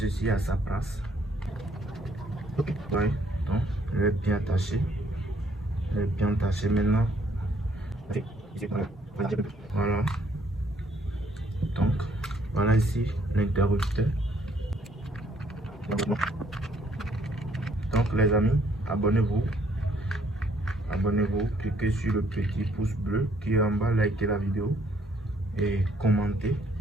à sa place. Ok. Ouais. Donc, il est bien attaché. Il est bien attaché maintenant. Voilà. Donc, voilà ici l'interrupteur. Donc les amis, abonnez-vous. Abonnez-vous, cliquez sur le petit pouce bleu qui est en bas, likez la vidéo et commentez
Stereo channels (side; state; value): both; normal; correlation 0.66